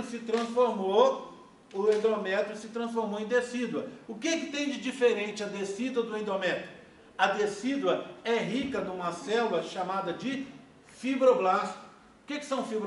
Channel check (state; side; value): identical; both; correlation 1.00